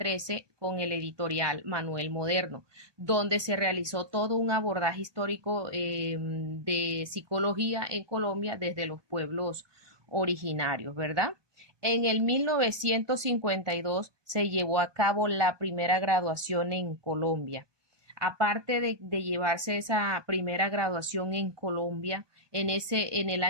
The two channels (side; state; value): left; late; 1.2 ms